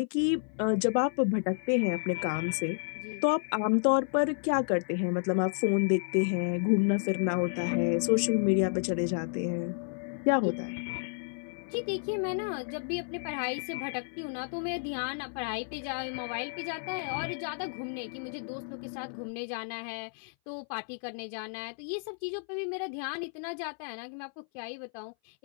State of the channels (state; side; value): silent; right; 57 dB below the other